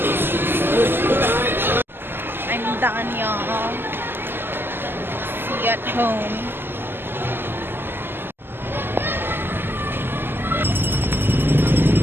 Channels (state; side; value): late; left; 0.10 ms